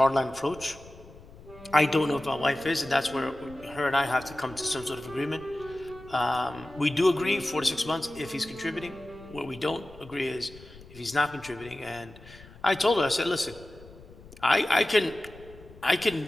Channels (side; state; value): left; noise; rumble, 20 dB below the sound